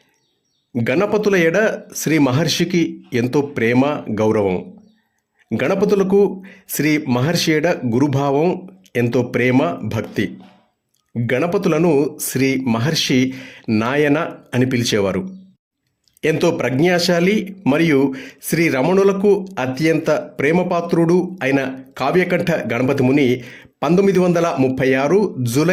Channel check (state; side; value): identical; both; correlation 1.00